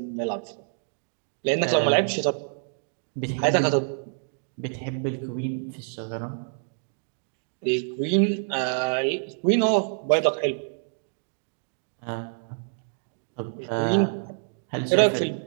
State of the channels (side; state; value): left; silent; digital silence